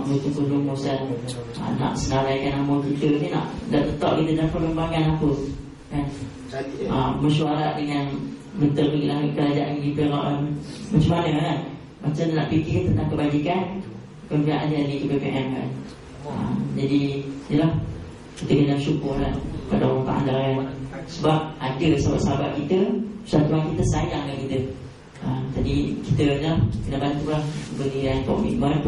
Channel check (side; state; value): both; identical; correlation 1.00